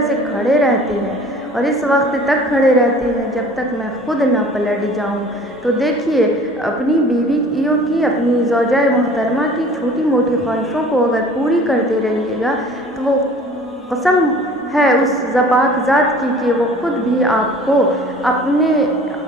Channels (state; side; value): normal; both; correlation 0.47